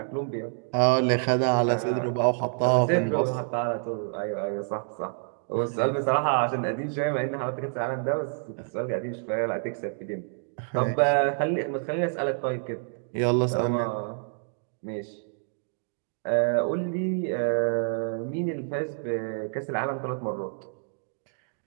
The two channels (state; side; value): silent; left; digital silence